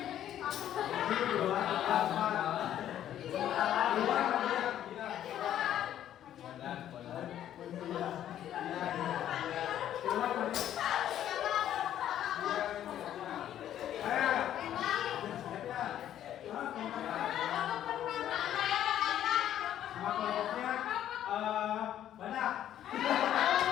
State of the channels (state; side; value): quieter; right; 11.2 dB